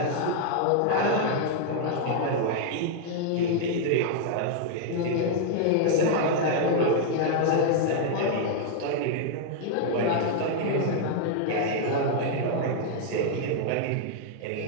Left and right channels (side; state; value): both; different; correlation -0.01